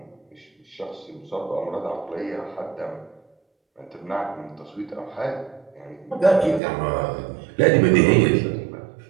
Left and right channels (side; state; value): left; drops out; at 6.6 s